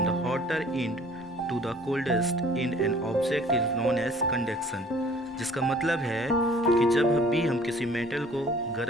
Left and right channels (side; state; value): both; normal; correlation 0.52